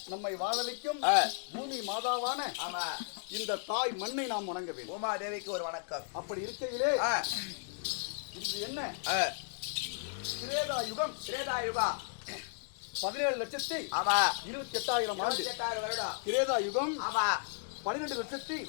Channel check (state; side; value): silent; right; digital silence